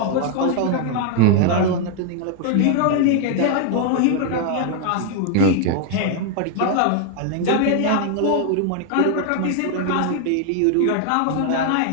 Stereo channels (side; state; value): both; different; correlation 0.00